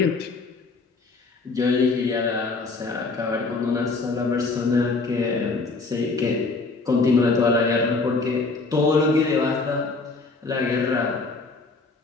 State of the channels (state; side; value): quieter; right; 3.8 dB